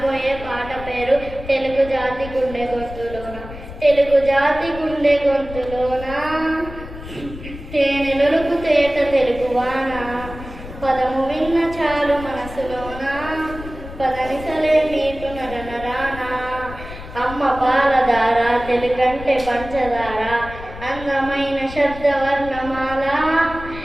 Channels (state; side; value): noise; left; rumble, 13 dB below the sound